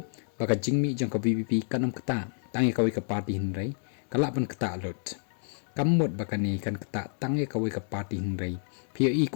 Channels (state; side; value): silent; right; digital silence